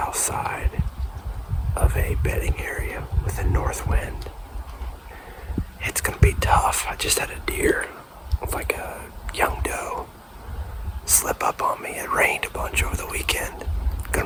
side of a bedding area with a north wind. It's gonna be tough. I just had a deer with like a young doe slip up on me. It rained a bunch over the weekend.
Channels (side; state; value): both; identical; correlation 1.00